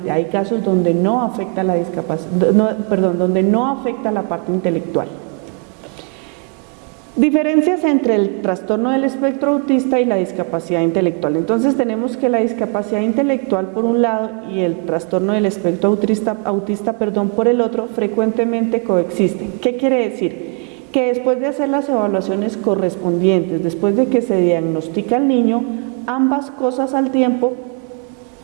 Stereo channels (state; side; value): quieter; left; 37.3 dB